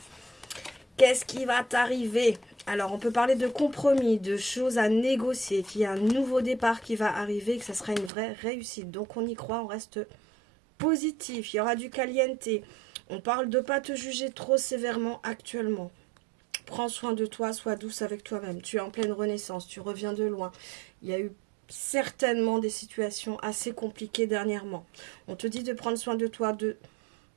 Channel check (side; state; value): left; drops out; at 8.1 s